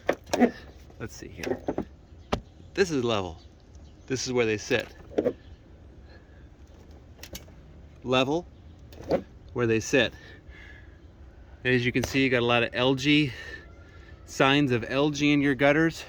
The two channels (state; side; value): identical; both; correlation 1.00